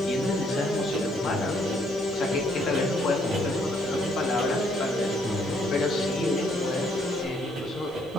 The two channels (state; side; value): noise; left; hiss, 30 dB below the sound